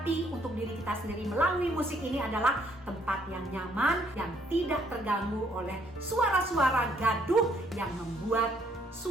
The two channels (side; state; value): both; normal; correlation 0.67